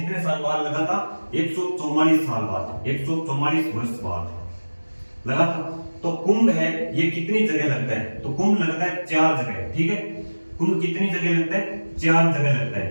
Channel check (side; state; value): both; inverted; correlation -1.00